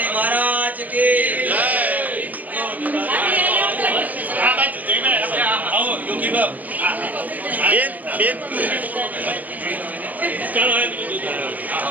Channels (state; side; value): late; left; 0.080 ms